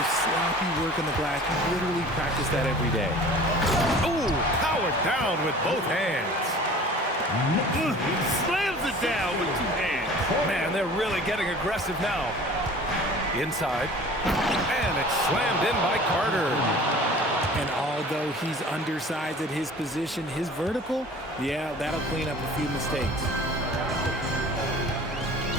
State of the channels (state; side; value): normal; both; correlation 0.44